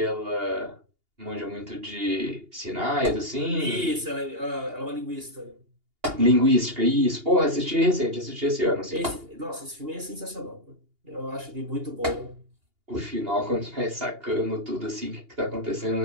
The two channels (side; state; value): left; late; 2.8 ms